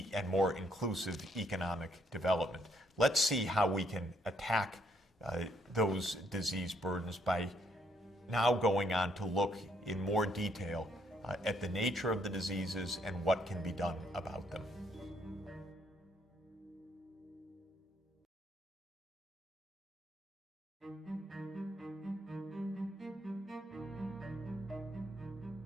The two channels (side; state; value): both; normal; correlation 0.71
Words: and more inclusive economic development. Let's see how we can attack those disease burdens by now going on to look in more detail at the nature of the diseases and what can be done about them.